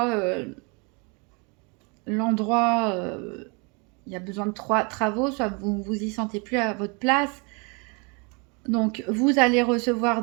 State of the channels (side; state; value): left; quieter; 32.3 dB